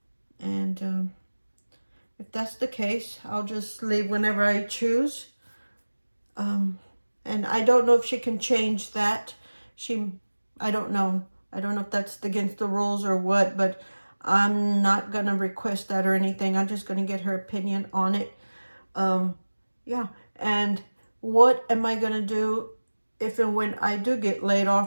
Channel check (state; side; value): inverted; both; correlation -1.00